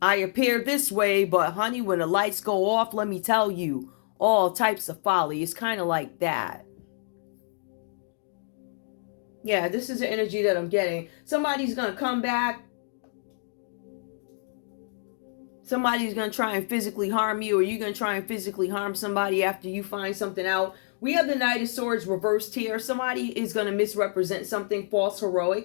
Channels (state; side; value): silent; right; digital silence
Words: I appear this way, but honey, when the lights go off, let me tell you, all types of folly. It's kind of like that. Yeah, this is the energy that I'm getting. Somebody's going to come back. Somebody's going to try and physically harm you, or you're going to try and physically harm somebody after you find something out. We have the Knight of Swords reversed here. Somebody is going to misrepresent something, false